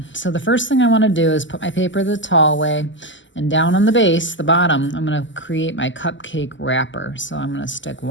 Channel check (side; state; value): right; late; 0.54 ms